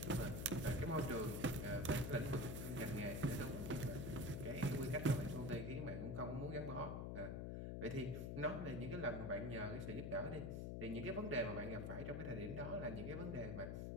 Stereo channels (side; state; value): left; noise; hum, 3 dB below the sound